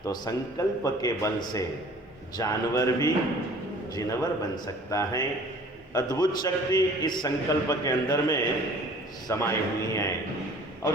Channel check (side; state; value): both; normal; correlation 0.50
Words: तो संकल्प के बल से जानवर भी जिनवर बन सकता है। अद्भुत शक्ति इस संकल्प के अंदर में समाई हुई है